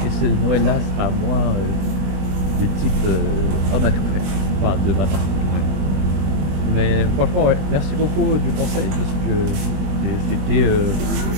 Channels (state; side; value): late; left; 21 ms